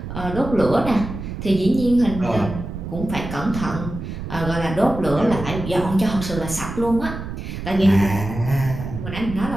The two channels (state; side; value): noise; right; rumble, 8 dB below the sound